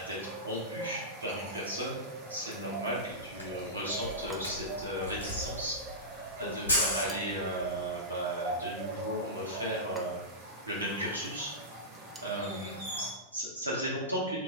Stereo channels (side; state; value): both; normal; correlation -0.15